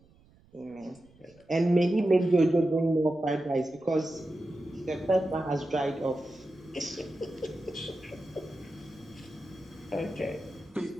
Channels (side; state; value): right; noise; rumble, 28 dB below the sound